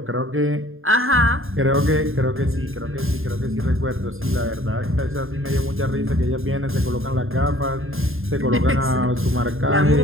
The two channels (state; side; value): late; left; 0.60 ms